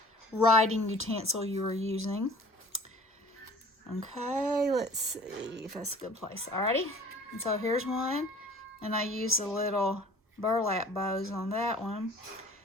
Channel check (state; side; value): normal; both; correlation 0.48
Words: writing utensil you were using. Okay, let's see if that's a good place. Alrighty, and so here's one, and I used the little burlap bows on that one,